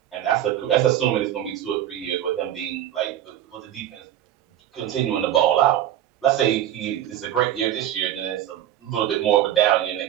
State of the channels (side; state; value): left; quieter; 11.6 dB